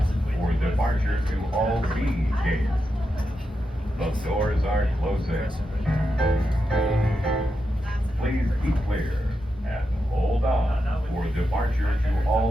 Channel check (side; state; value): both; normal; correlation 0.87